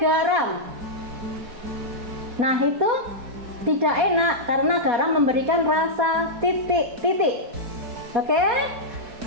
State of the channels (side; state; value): left; late; 4.6 ms